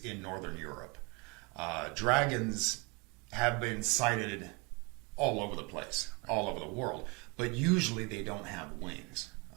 in Northern Europe. Dragons have been sighted all over the place, all over the world, but usually they don't have wings.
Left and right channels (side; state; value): left; quieter; 28.8 dB